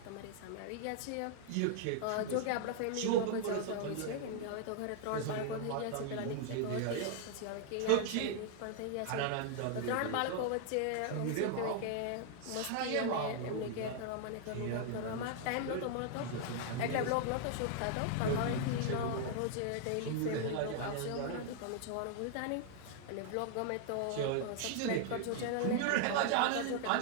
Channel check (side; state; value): both; different; correlation 0.00